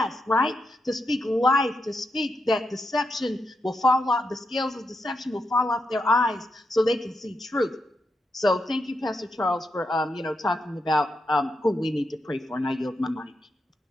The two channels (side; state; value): both; normal; correlation 0.84